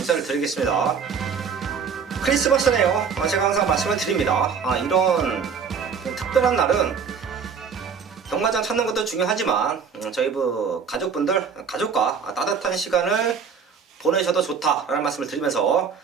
드리겠습니다. 크리스마스네요. 제가 항상 말씀을 드립니다. 이런 특별한 날은 경마장 찾는 것도 중요하지만 저희 가족과 따뜻한 시간을 보내셔도 좋다라는 말씀을 드리면서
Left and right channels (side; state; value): left; quieter; 6.3 dB